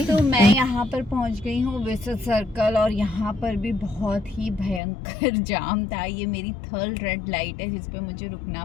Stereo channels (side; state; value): right; drops out; at 4.8 s